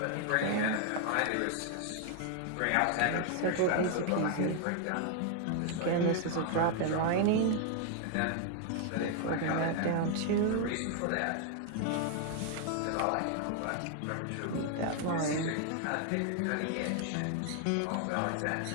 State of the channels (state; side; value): different; both; correlation 0.00